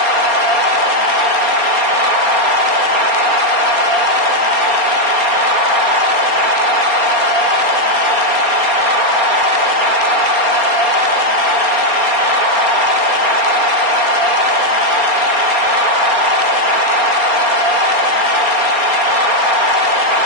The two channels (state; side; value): late; left; 4.3 ms